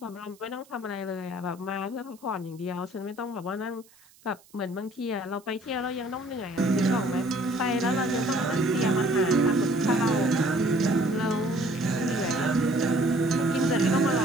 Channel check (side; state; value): right; noise; hiss, 28 dB below the sound